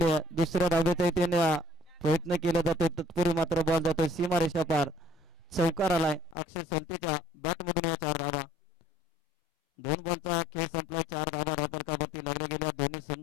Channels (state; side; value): drops out; right; at 6.4 s